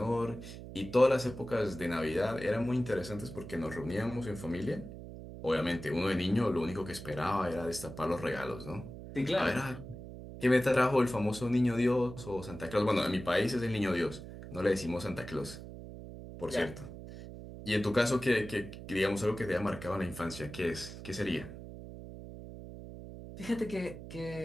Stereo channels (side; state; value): right; noise; hum, 12 dB below the sound